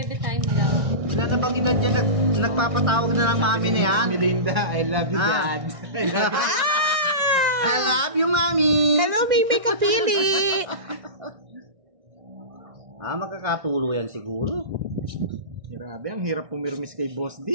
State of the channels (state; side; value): late; left; 1.6 ms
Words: time daw. Wala na bang ina dyan, nagpapatawag na ng mami na yan? Melinda, I love you, Ah. Dad. I love you. I love you, mami. Hello, Mimi Kapili. Magkakatulo yan siguro. Grabe, ang hirap pumirmis kay Boss